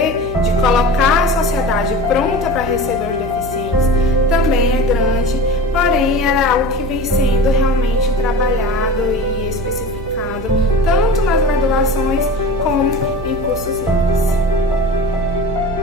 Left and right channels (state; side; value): noise; right; hum, 11 dB below the sound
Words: de colocar a sociedade pronta para receber os deficientes também é grande, porém era algo que vem sendo realmente trabalhado e especificado tanto nas graduações como em cursos livres.